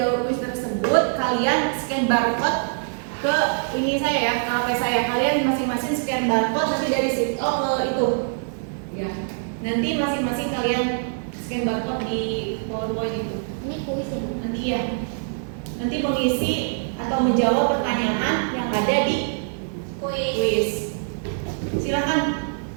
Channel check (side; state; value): left; silent; digital silence